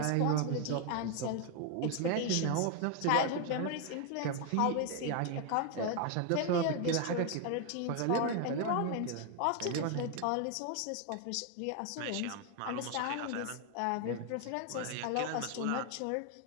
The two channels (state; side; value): different; both; correlation 0.01